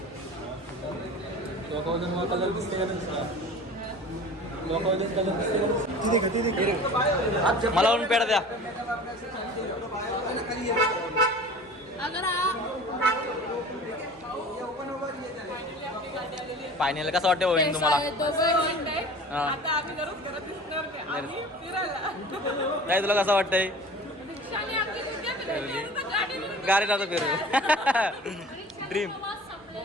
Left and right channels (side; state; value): both; normal; correlation 0.41